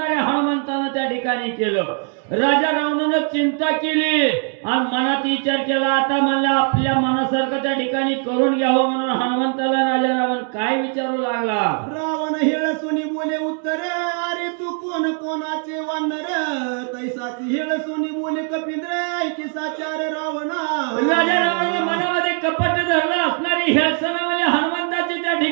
हनुमंतानं त्या ठिकाणी केलं. राजा रावणानं चिंता केली आणि मनात विचार केला, आता म्हणलं आपल्या मनासारखं त्या ठिकाणी करून घ्यावं. म्हणून हनुमंताला राजा रावण काय विचारू लागला. रावण हेळसुनी बोले उत्तर, अरे तू कोण कोणाचे वानर तैसाची हेळसुनी बोले कपिंद्र ऐकी साचार रावणा. राजा रावणानं मनामध्ये कपट धरलं असणारी हेळसणावाले हनुमंताची त्या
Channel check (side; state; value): left; quieter; 39.8 dB